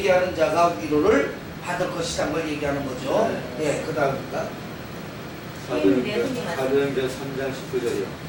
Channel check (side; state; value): both; identical; correlation 1.00